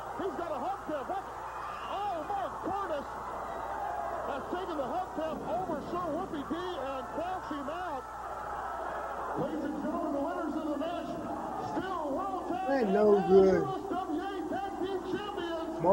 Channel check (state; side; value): identical; both; correlation 1.00